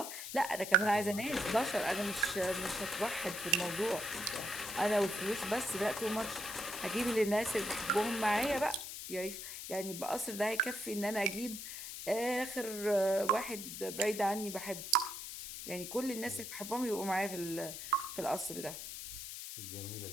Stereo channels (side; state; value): left; noise; hiss, 8 dB below the sound